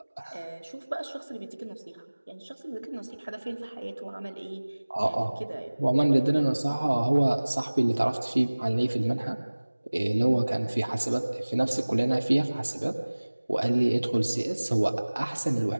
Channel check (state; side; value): inverted; both; correlation -1.00